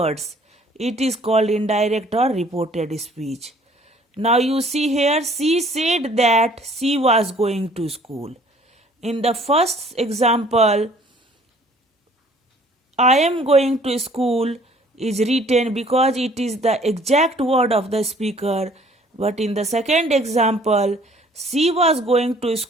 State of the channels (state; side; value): normal; both; correlation 0.56